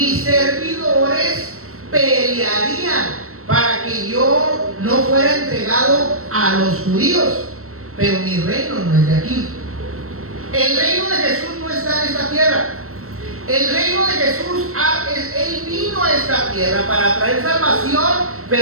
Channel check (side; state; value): left; late; 0.63 ms